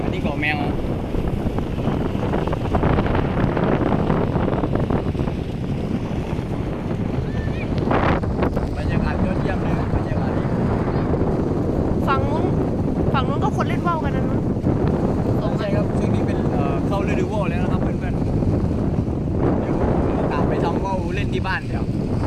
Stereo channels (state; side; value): identical; both; correlation 1.00